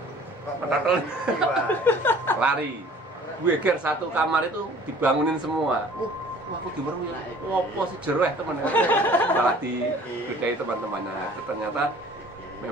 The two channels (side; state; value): both; normal; correlation 0.51